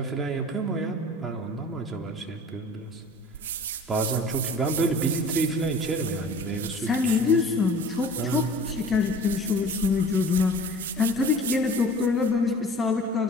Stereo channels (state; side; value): normal; both; correlation 0.44